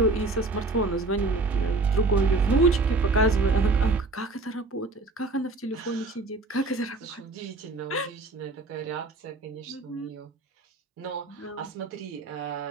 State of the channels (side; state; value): left; quieter; 3.3 dB